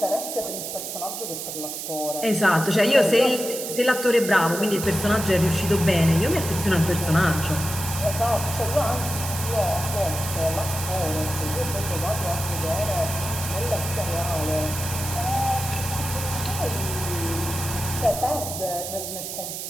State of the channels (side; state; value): right; noise; hiss, 6 dB below the sound